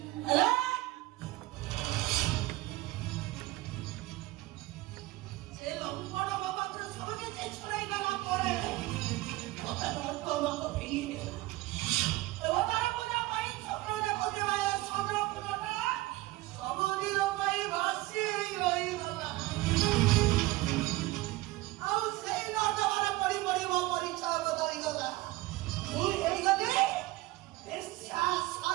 ହେଲେ ସେ ଲମ୍ବଣ ବାବାଙ୍କର ସବୁ କିଛି ଛଡ଼ାଇ ଦେଲା ପରେ ମତେ ମତ ଭେଙ୍ଗିଦେଲା। ଦେବତାର ପୂଜା ପାଇଁ ସ୍ୱପ୍ନ ଦେଖୁଥିବା ଏ ଚନ୍ଦ୍ରପୁରଟା ସବୁଦିନ ପାଇଁ ଭାସି ରହିଗଲା। ଆଉ ସେଇ ନର୍ଦ୍ଦମାରେ ପଡ଼ି ପଡ଼ି ମୋ ପରିଚୟ ବଦଳିଗଲା। ମୁଁ ହେଇଗଲି ବେଶ୍ୟା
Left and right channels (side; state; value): left; quieter; 19.1 dB